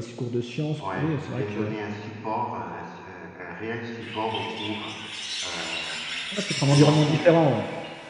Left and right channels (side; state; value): both; identical; correlation 1.00